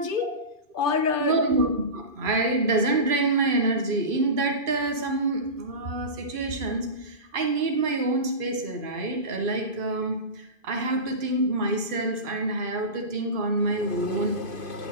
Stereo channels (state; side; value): late; left; 2.5 ms